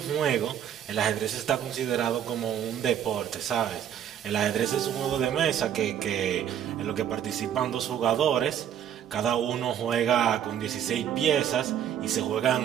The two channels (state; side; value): quieter; left; 9.6 dB